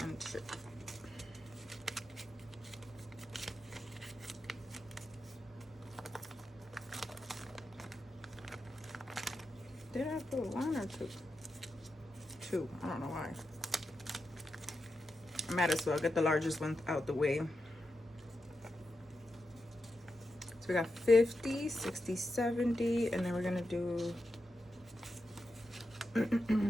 and 2. Did I put 1 or 2? 2. I don't know why. I might as well get the largest one out the way. So we got 50, 60, 70, and then we're gonna do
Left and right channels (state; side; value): normal; both; correlation 0.88